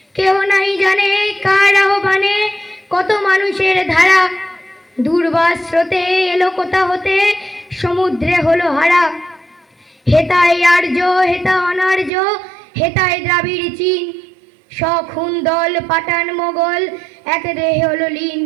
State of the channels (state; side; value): drops out; left; at 12.1 s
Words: কেহ নাই জানে কার আহ্বানে কত মানুষের ধারা, দুর্বাস স্রোতে এলো কোথা হতে সমুদ্রে হলো হারা। হেতায় আর্য হেতা অনার্য, হেতায় দ্রাবিড় চীন, সখুন দল পাঠান মোগল এক দেহে হলো লীন।